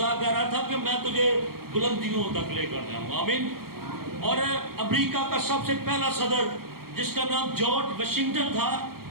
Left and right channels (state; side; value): late; left; 0.94 ms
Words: کہہ رہا تھا کہ میں تجھے بلندیوں تک لے کر جاؤں گا. آمین. اور امریکہ کا سب سے پہلا صدر جس کا نام جارج واشنگٹن تھا،